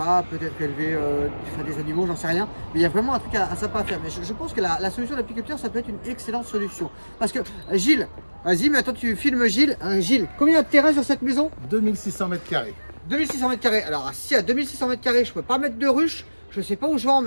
peut-être élever des animaux, j'en sais rien. Mais il y a vraiment un truc sympa à faire. Mais je pense que la solution d'apiculteur, ça peut être une excellente solution. Parce que Gilles, vas-y, mais attends, tu filmes Gilles. Gilles, combien de terrain sur cette maison? 2600 mètres carrés. 2600 mètres carrés. Alors, si à 2600 mètres carrés, je peux pas mettre de ruche, je sais pas où je vais en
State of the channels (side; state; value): both; inverted; correlation -1.00